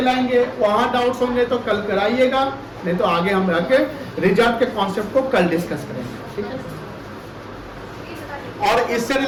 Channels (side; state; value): both; identical; correlation 1.00